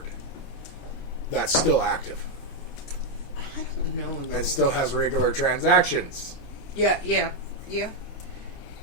that's still active I don't know. Though. and still has regular transactions. Yeah.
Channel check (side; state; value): right; late; 29 ms